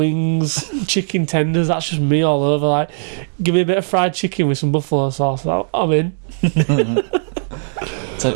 chicken tenders. That's just me all over. Like, give me a bit of fried chicken with some buffalo sauce. I'm in. So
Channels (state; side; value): silent; left; 67 dB below the other